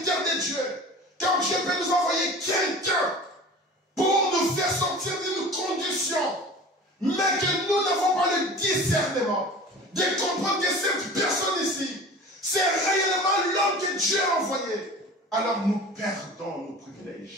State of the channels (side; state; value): both; normal; correlation 0.39